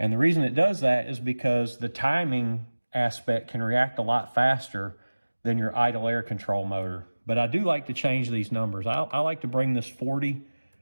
the reason it does that is because the timing aspect can react a lot faster than your idle air control motor. But I do like to change these numbers. I like to bring this 40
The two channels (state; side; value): inverted; both; correlation -1.00